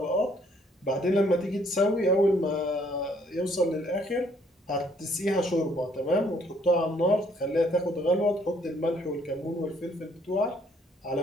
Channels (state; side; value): normal; both; correlation 0.64